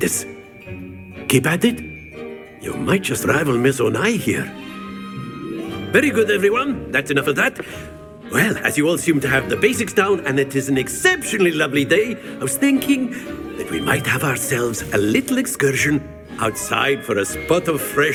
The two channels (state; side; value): identical; both; correlation 1.00